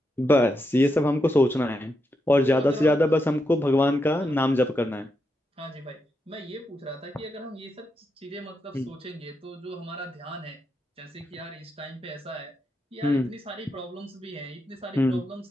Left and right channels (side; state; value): both; normal; correlation 0.84